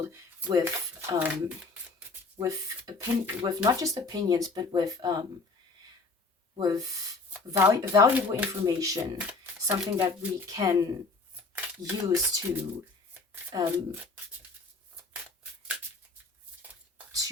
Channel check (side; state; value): right; quieter; 3.7 dB